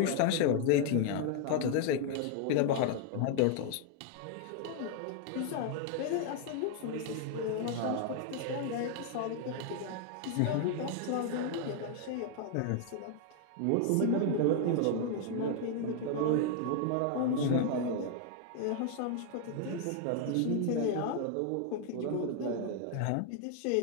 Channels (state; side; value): different; both; correlation 0.00